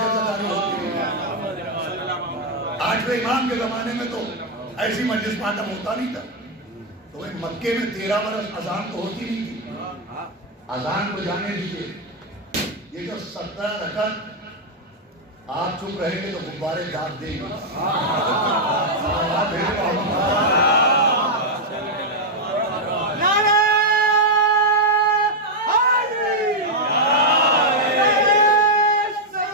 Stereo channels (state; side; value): normal; both; correlation -0.01